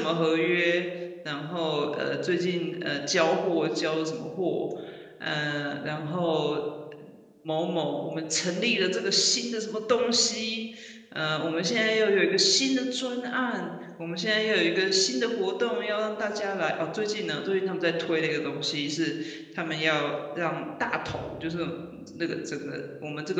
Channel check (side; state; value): both; identical; correlation 1.00